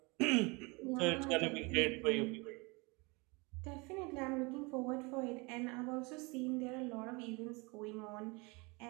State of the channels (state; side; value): quieter; left; 27.6 dB